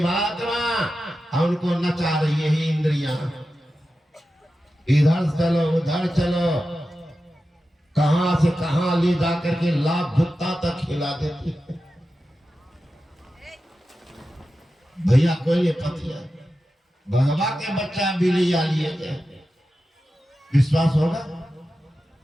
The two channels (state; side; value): normal; both; correlation 0.92